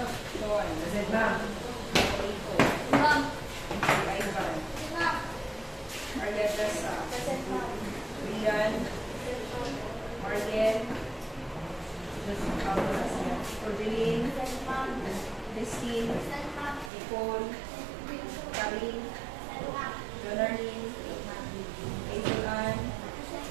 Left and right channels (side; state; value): left; drops out; at 16.9 s